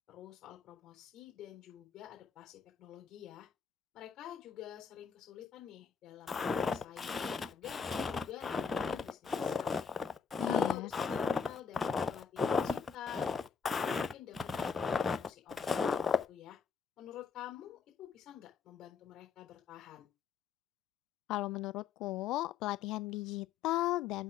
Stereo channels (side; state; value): right; quieter; 5.9 dB